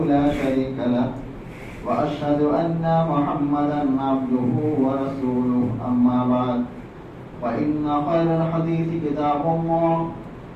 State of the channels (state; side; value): identical; both; correlation 1.00